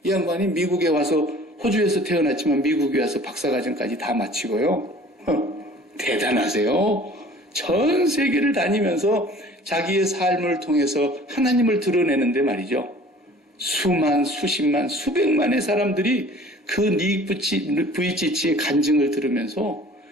이 양반이 미국에 와서 호주에서 태어났지만 미국에 와서 박사과정까지 다 마치고요. 대단하세요. 전 세계를 다니면서 자기의 삶을 통해서 하나님을 드러내는데 말이죠. 수만, 수십만, 수백만의 사람들이 그 닉 부이치치의 간증을 들으면서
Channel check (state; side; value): normal; both; correlation 0.48